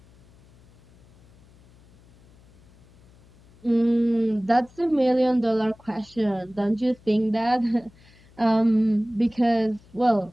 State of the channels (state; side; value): noise; left; hum, 28 dB below the sound